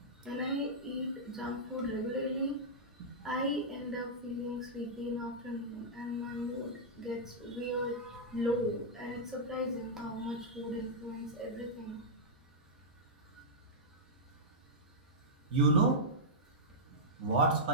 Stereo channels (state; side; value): normal; both; correlation -0.10